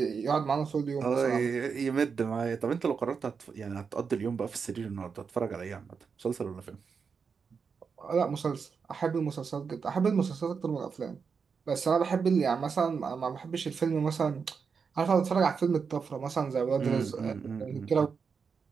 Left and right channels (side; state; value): left; quieter; 5.8 dB